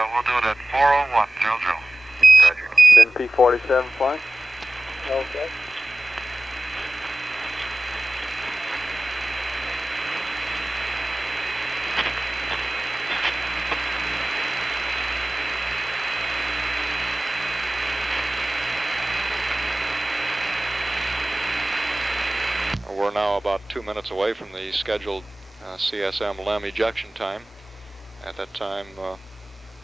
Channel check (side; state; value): both; normal; correlation 0.97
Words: we'll do it at 401, Joe. Roger. Then P47 flight. Okay. We're now about 2 minutes away from the scheduled CSM LEM ejection time. At that time,